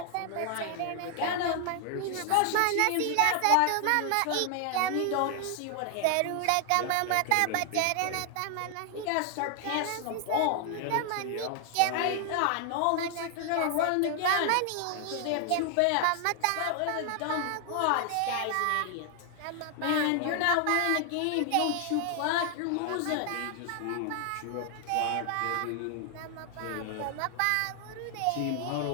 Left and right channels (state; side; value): different; both; correlation 0.00